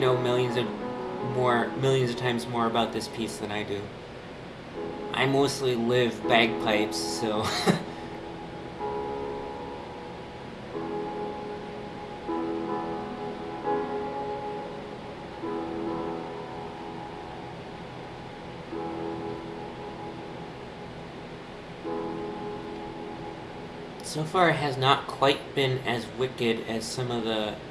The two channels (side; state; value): both; identical; correlation 1.00